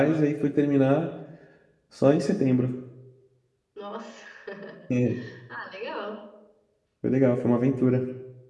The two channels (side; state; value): both; identical; correlation 1.00